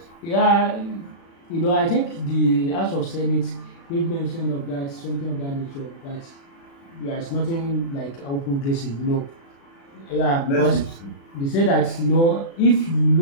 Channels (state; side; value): late; right; 36 ms